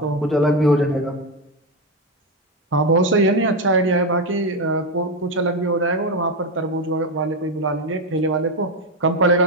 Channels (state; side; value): normal; both; correlation 0.11